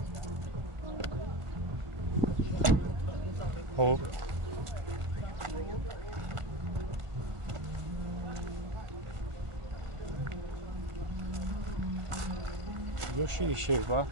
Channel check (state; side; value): late; left; 1.5 ms